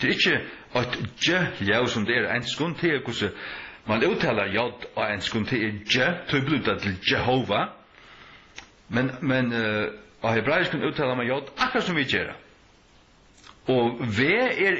Det ikke et J, som det enskon, det hvordan man uttaler J og enskon til J, til bluta til Jehova. Men og hebraisken uttaler man J akkurat som vi gjør. Og V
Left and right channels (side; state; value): both; identical; correlation 1.00